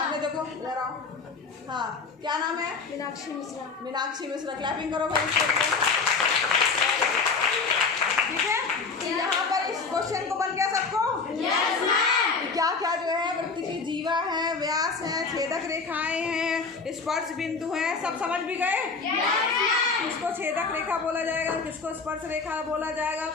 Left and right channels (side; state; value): right; quieter; 4.6 dB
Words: देखो, इधर आओ। हाँ, क्या नाम है? मीनाक्षी मिश्रा। मीनाक्षी मिश्रा, क्लैपिंग करो भाई इसके लिए। ठीक है, तो यहाँ पर इस क्वेश्चन को बन गया सबको? Yes ma'am. क्या क्या जो है वृत्त की जीवा है, व्यास है, छेदक रेखाएं हैं, स्पर्श बिंदु हैं, सब समझ भी गए? Yes ma'am. किसको छेदक रेखा बोला जाएगा, किसको स्पर्श रेखा बोला जाएगा,